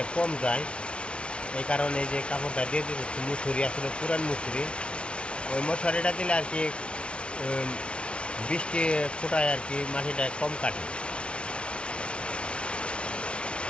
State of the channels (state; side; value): late; right; 0.059 ms